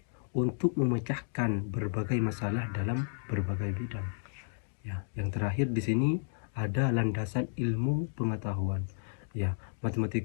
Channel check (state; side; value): silent; right; digital silence